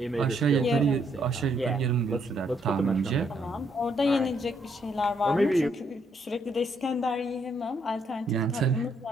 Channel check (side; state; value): both; normal; correlation 0.73